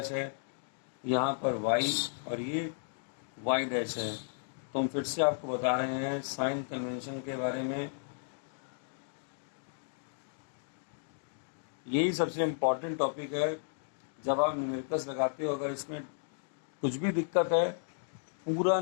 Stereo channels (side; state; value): right; silent; digital silence